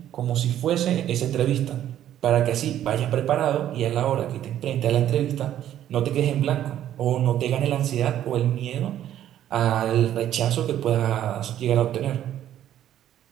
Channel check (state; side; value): quieter; left; 11.5 dB